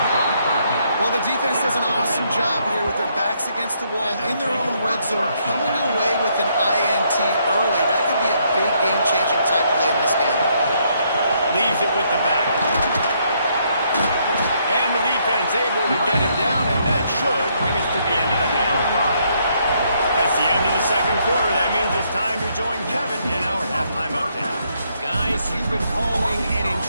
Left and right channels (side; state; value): both; inverted; correlation -0.72